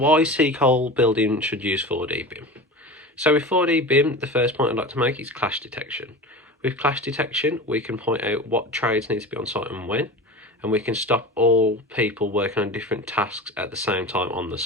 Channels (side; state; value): both; normal; correlation 0.32